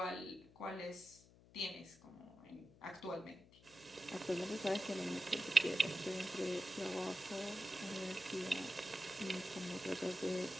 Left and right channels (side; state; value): left; noise; hum, 24 dB below the sound